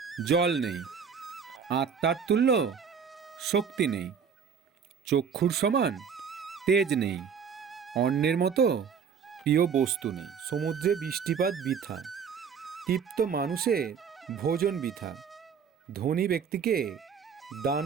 জল নেই, আত্মার তুল্য শক্তি নেই, চক্ষুর সমান তেজ নেই, অন্যের মতো প্রিয় বস্তু নেই। সমুদ্রে বৃষ্টিপাত বৃথা, তৃপ্ত মানুষের ভোজন বৃথা, ধনী ব্যক্তিকে দান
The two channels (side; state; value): left; quieter; 6.7 dB